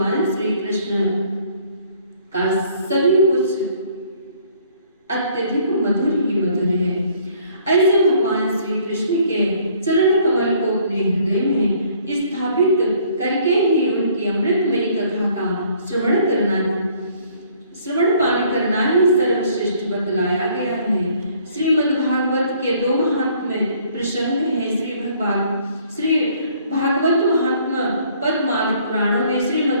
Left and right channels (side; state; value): both; inverted; correlation -0.60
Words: श्री कृष्ण का सभी कुछ अत्यधिक मधुर ही मधुर है। ऐसे भगवान श्री कृष्ण के चरण कमल को अपने हृदय में स्थापित करके ही उनकी अमृतमयी कथा का श्रवण पान करना ही सर्वश्रेष्ठ बतलाया गया है। श्रीमद् भागवत के दो महात्म्य प्रसंग हैं। श्री भागवत महात्मा पद्मादि पुराणों में